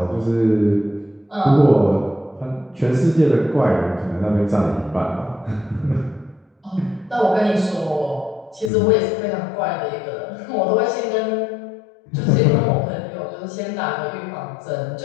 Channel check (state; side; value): drops out; right; at 8.7 s